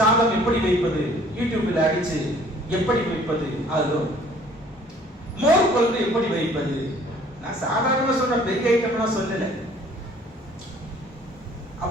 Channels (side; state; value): both; normal; correlation 0.55